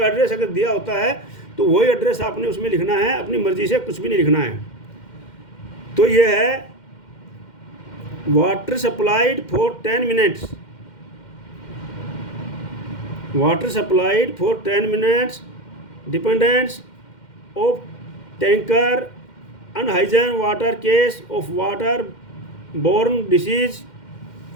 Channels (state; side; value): late; right; 2.1 ms